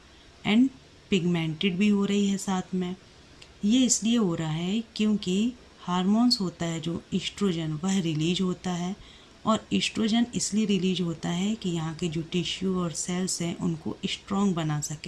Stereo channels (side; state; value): both; identical; correlation 1.00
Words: and pigmented भी हो रही है साथ में। ये इसलिए हो रहा है क्योंकि हार्मोन्स होता है जो ईस्ट्रोजन, वह रिलीज होता है, और ईस्ट्रोजन इसलिए रिलीज होता है कि यहाँ के जो टिश्यू और सेल्स हैं उनको स्ट्रॉन्ग बना